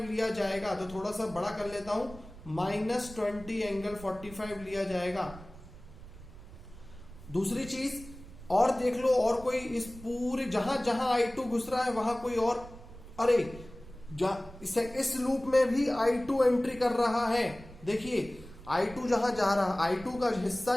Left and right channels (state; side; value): noise; right; rumble, 17 dB below the sound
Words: लिया जाएगा। तो थोड़ा सा बड़ा कर लेता हूं, -20 एंगल 45 लिया जाएगा। दूसरी चीज और देख लो, और कोई इस पूरे जहां जहां I2 घुस रहा है वहां कोई और, अरे इस लूप में भी I2 एंट्री कर रहा है। देखिए I2 जहां जा रहा, I2 का हिस्सा